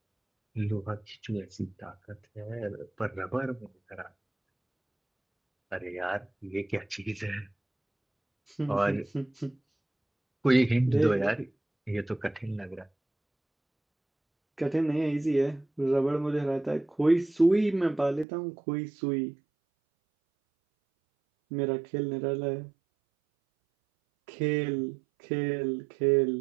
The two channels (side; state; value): left; drops out; at 18.2 s